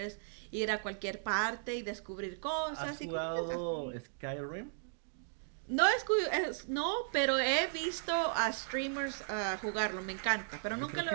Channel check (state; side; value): silent; left; digital silence